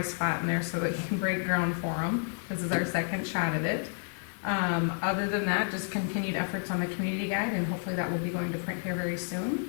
spot in there so that we can break ground for them. This is our second shot at it. Other than that, just continued efforts on the community guide, and hopefully that will be going to print here very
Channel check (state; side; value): silent; right; 58 dB below the other